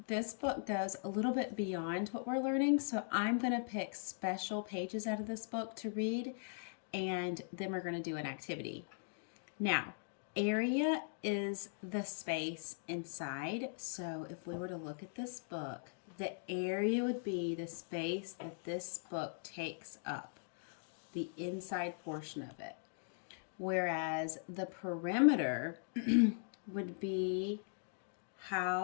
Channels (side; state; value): right; silent; digital silence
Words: this book goes a little bit beyond what we're learning, so I'm going to pick special pages out of this book to read and then we're going to do an activity. Now, area is the space inside. So if we were to look at this book, the area would be the space that this book takes up, the inside portion of it. Whereas the perimeter would be